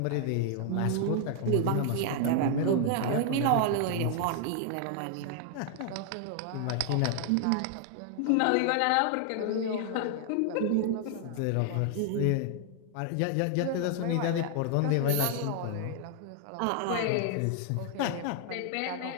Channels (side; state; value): both; different; correlation 0.00